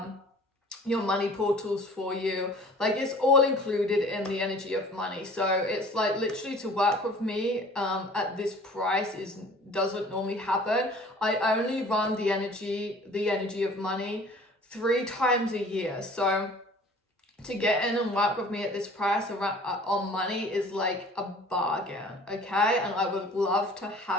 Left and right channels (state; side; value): normal; both; correlation 0.48